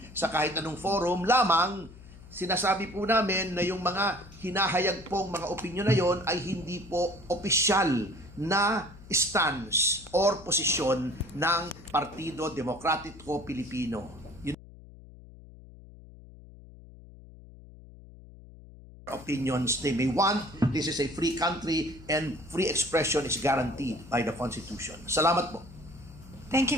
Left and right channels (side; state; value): left; noise; hum, 19 dB below the sound